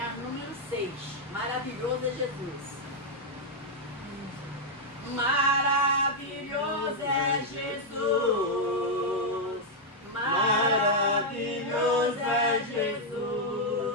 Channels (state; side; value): normal; both; correlation -0.02